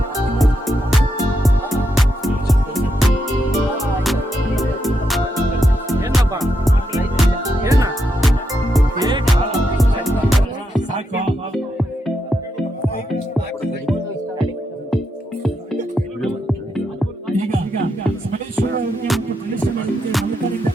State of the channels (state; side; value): normal; both; correlation 0.82